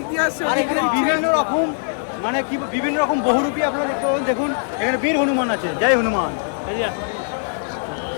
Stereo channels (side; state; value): right; silent; digital silence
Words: আর এখানে বিভিন্ন রকম মানে কি বিভিন্ন রকম বহুরূপী আপনারা দেখতে পাবেন। দেখুন এখানে বীর হনুমান আছে, জয় হনুমান।